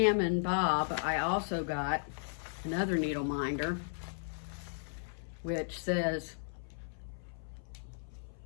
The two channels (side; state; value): right; silent; 54 dB below the other